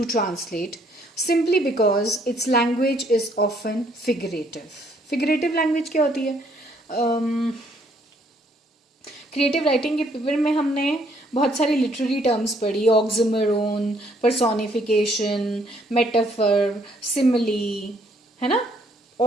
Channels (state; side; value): normal; both; correlation 0.67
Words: translate simply because its language is often figurative. Figurative language क्या होती है? Creative writing के paper में हमने बहुत सारी literary terms पढ़ी, ऑक्सिमोरोन, personification, metaphor, simile, है ना?